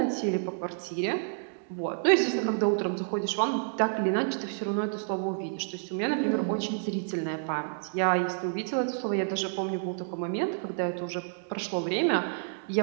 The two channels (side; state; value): left; silent; digital silence